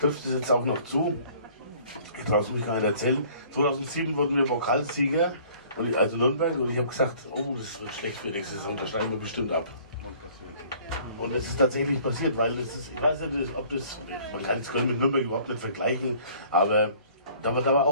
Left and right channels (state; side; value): inverted; both; correlation -0.54